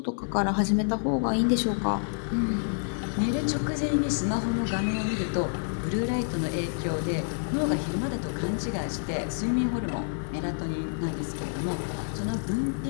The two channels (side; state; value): right; silent; digital silence